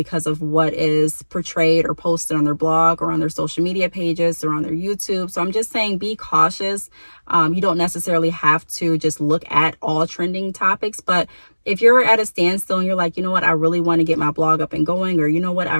of what is portrayed or posted on their blog or on their social media pages or on their YouTube. So I'm just saying be cautious. You don't necessarily have to just look at all trending topics, but if you're at a standstill and you're like, you know what, I really want to get my blog up and going, or you know what, I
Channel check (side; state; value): both; inverted; correlation -1.00